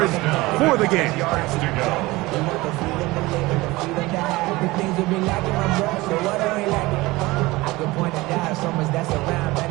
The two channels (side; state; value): left; quieter; 20.7 dB